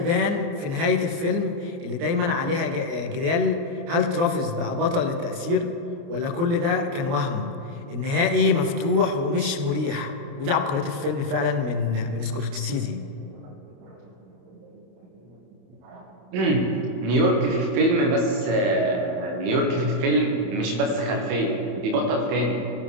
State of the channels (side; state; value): left; late; 29 ms